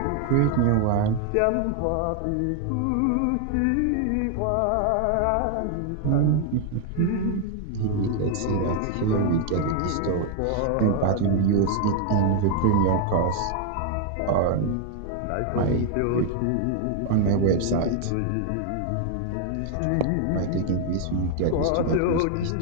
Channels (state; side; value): different; both; correlation 0.00